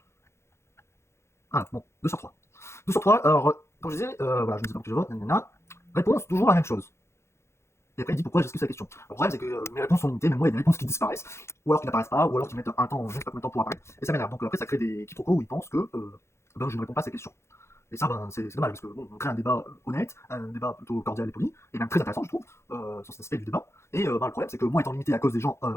Ah, bon, 2 sur 3. 2 sur 3, alors, comme je disais, voilà, je ne sais pas que je vote, nanana. Réponse, toujours la même chose. Et après, il dit pourquoi j'esquive sa question. Le problème, c'est que mes réponses sont limitées, même moi, il y a des réponses qui disparaissent, ou alors qui n'apparaissent pas, ou alors qui mettent un temps, je ne sais pas combien de temps pour apparaître. Et ça m'énerve. Donc après, ça crée des quiproquos où ils pensent que ben, je ne réponds pas à ces questions. Et ça, ben, c'est dommage, parce que bon, on crée un débat honnête, un débat plutôt cordial et poli, et même très intéressant, je trouve, sur cet aspect du débat. Et ben, le problème, c'est que moi, étant limité à cause des gens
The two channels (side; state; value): right; late; 0.13 ms